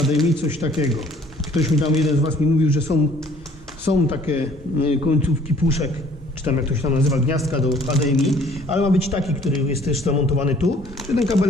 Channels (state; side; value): normal; both; correlation 0.56